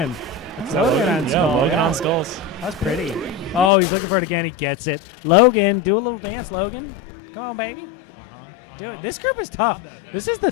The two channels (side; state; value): right; drops out; at 3.7 s